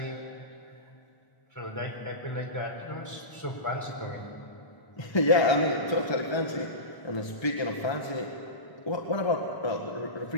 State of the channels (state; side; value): late; right; 1.2 ms